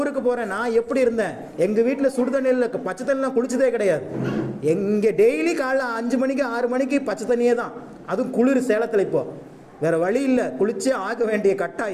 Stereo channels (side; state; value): both; identical; correlation 1.00